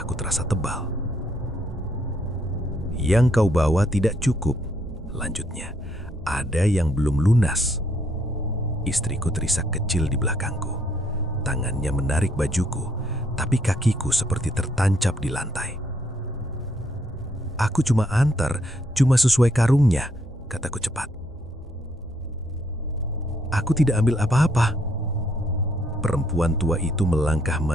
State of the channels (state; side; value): normal; both; correlation 0.71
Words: terasa tebal. "Yang kau bawa tidak cukup," lanjutnya. "Ada yang belum lunas." Istriku terisak kecil di belakangku. Tangannya menarik bajuku, tapi kakiku seperti tertancap di lantai. "Aku cuma antar, cuma sesuai karungnya," kataku cepat. "Aku tidak ambil apa-apa." Perempuan tua itu melangkah